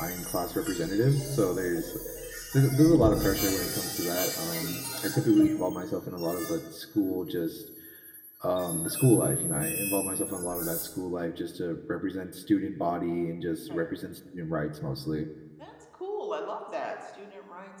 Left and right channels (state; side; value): identical; both; correlation 1.00